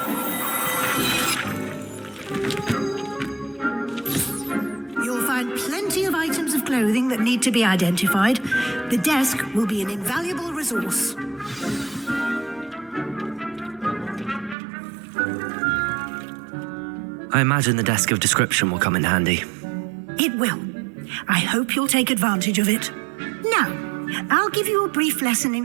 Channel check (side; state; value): left; drops out; at 14.6 s